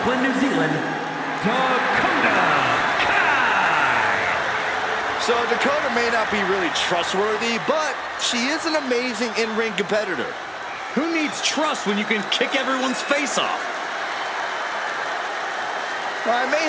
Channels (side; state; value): both; identical; correlation 1.00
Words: New Zealand, Dakota Kai. So Dakota may not be really trustworthy, but she is an amazing in-ring competitor. Who needs trust when you can kick everyone's face off? Well, I may